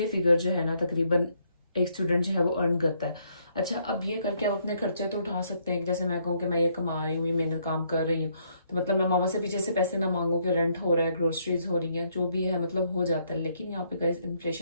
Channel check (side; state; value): both; inverted; correlation -0.71